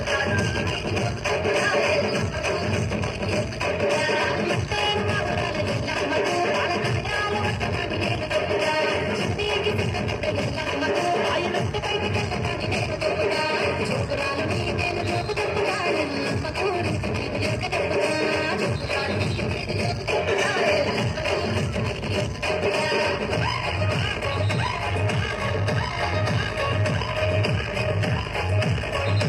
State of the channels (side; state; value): both; identical; correlation 1.00